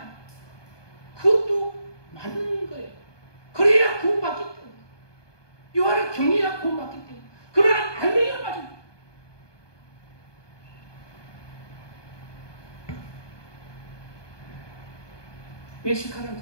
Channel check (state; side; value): late; right; 1.2 ms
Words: 그것도 맞는 거예요. 그래야 구원받기 때문에. 여호와를 경외해야 구원받기 때문에. 그러나 알맹이가 맞습니다. 외식하는